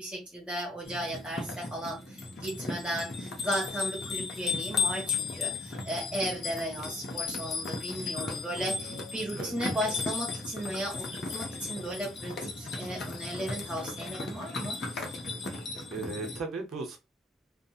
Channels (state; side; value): normal; both; correlation 0.65